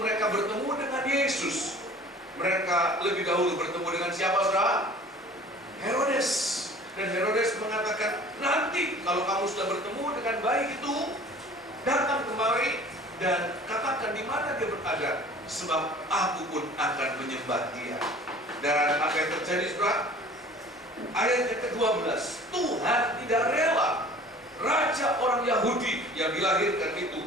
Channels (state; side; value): normal; both; correlation 0.46